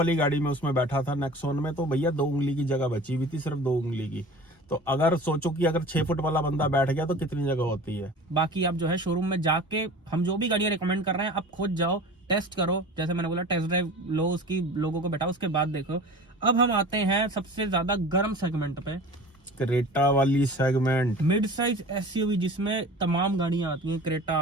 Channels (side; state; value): both; normal; correlation 0.39